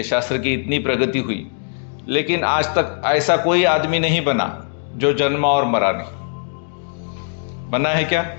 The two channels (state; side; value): silent; right; digital silence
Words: शास्त्र की इतनी प्रगति हुई, लेकिन आज तक ऐसा कोई आदमी नहीं बना जो जन्मा और मरा नहीं। बना है क्या?